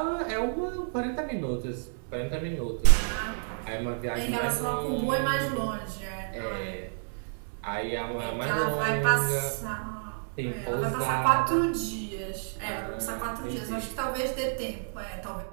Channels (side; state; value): left; silent; 58 dB below the other